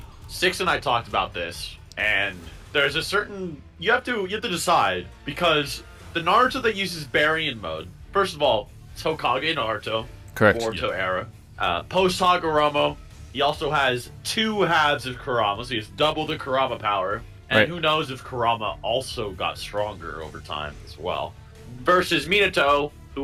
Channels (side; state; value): both; identical; correlation 1.00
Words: Six and I talked about this, and there's a certain you have to decide, because the Naruto that uses Baryon mode, first of all, it's Hokage Naruto, Correct. Boruto era. Post Hagoromo, he also has two halves of Kurama, so he has double the Kurama power. And who knows if Kurama also got stronger over time as well. Versus Minato,